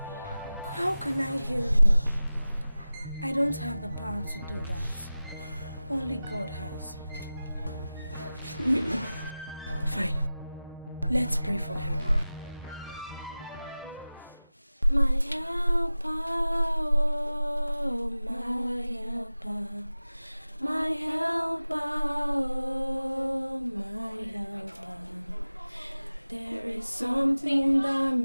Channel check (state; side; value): inverted; both; correlation -0.96